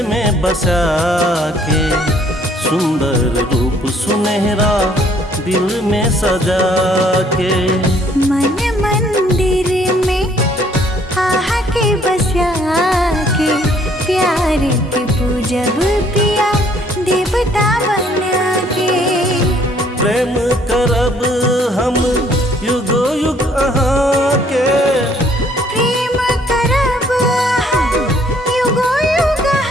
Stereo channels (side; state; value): both; normal; correlation 0.62